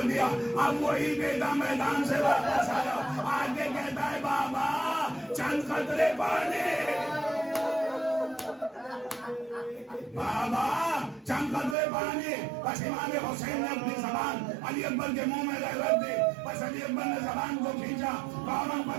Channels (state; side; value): drops out; left; at 11.8 s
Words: دیا۔ اب وہی بیٹا میدان سے واپس آیا، آگے کہتا ہے بابا چند قطرے پانی، بابا چند قطرے پانی۔ بس امام حسین نے اپنی زبان علی اکبر کے منہ میں رکھ دی، بس علی اکبر نے زبان کو کھینچا، فوراً